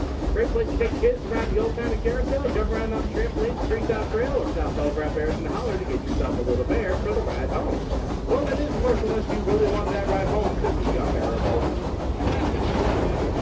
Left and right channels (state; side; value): identical; both; correlation 1.00